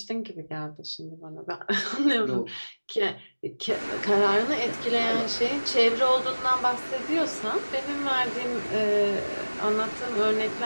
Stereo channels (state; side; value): inverted; both; correlation -1.00